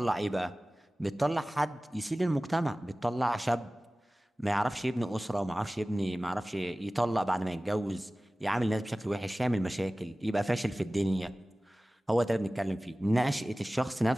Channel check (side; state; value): both; normal; correlation 0.97